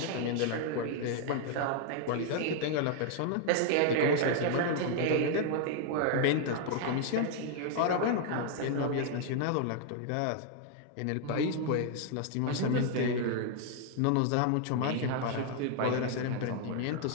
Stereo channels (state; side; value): different; both; correlation 0.00